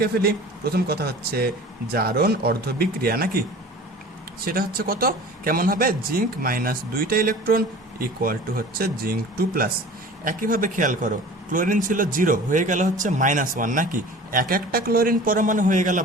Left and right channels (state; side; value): normal; both; correlation 0.41